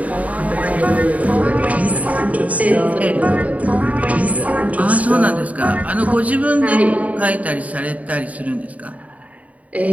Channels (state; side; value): late; left; 0.070 ms